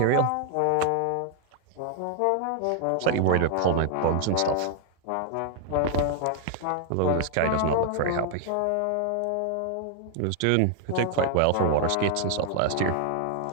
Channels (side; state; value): both; different; correlation 0.00